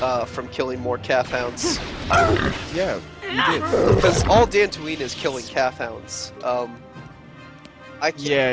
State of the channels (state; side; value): identical; both; correlation 1.00